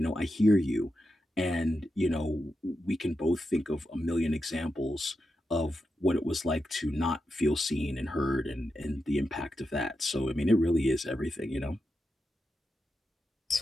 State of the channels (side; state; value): both; normal; correlation 0.88